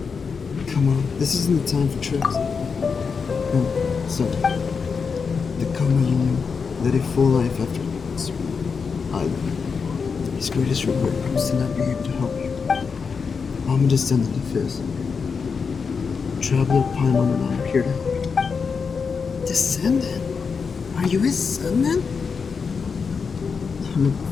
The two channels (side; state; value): right; quieter; 5.5 dB